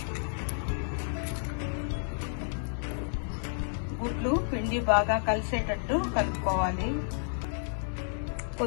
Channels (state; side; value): silent; right; digital silence